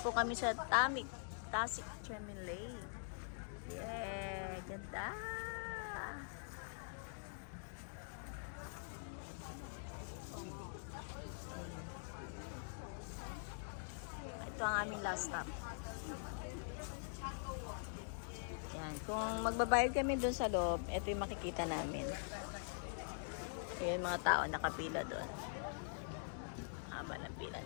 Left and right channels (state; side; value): silent; right; digital silence